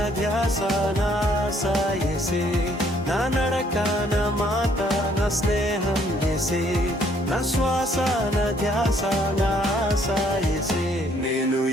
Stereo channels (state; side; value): normal; both; correlation 0.65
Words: ధ్యాస నా ఆశ యేసే. నా నడక నా మాట నా స్నేహం యేసే, నా శ్వాస నా ధ్యాస నా ఆశ యేసే. నేను